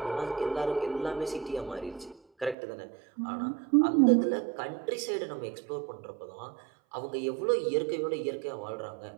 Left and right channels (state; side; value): drops out; left; at 2.6 s